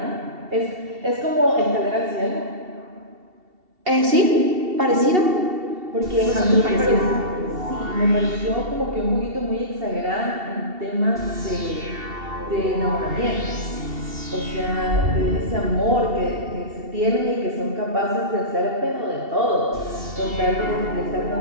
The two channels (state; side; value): late; left; 2.7 ms